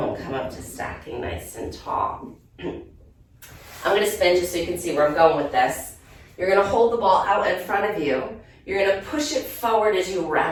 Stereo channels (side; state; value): both; identical; correlation 1.00